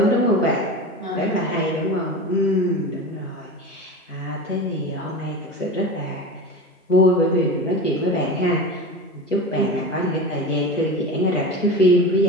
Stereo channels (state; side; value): normal; both; correlation 0.29